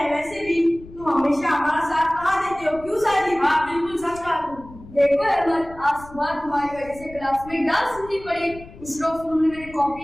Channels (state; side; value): noise; left; rumble, 18 dB below the sound